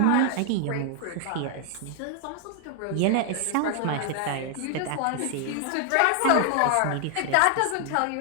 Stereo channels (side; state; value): both; different; correlation 0.00